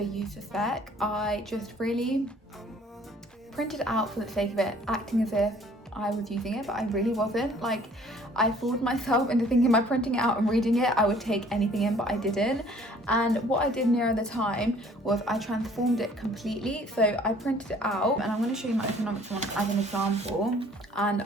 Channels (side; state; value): both; normal; correlation 0.56